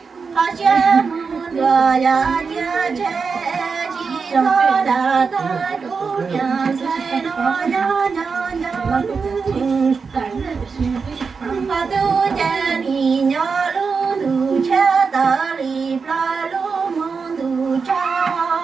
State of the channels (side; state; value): left; quieter; 5.2 dB